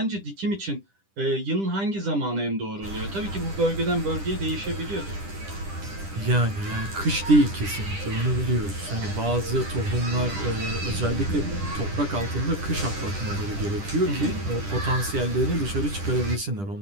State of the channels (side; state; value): left; late; 10 ms